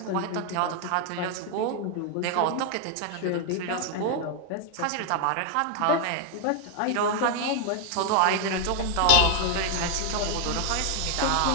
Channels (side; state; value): both; different; correlation 0.00